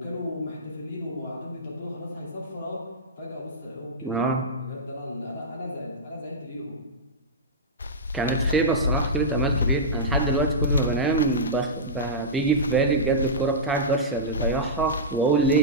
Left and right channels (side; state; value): both; normal; correlation -0.12